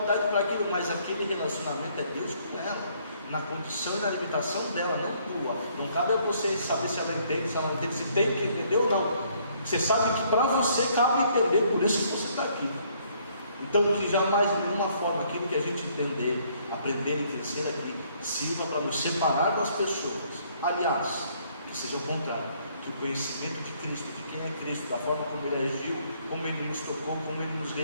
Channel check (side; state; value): both; inverted; correlation -0.66